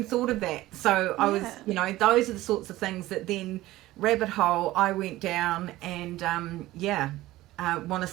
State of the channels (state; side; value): quieter; left; 16.8 dB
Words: thought of that. So I was, those are the sorts of things that then rabbit hole I went down, and want to